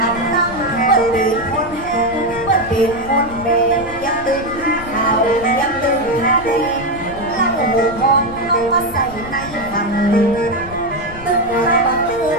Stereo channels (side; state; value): left; noise; rumble, 15 dB below the sound